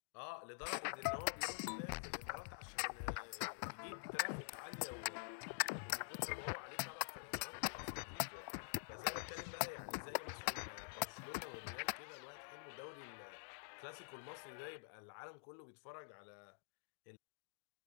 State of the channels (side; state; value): right; silent; digital silence